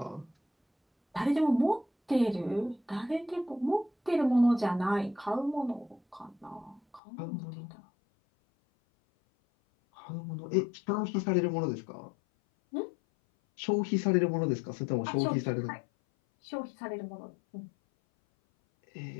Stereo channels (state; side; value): drops out; right; at 7.0 s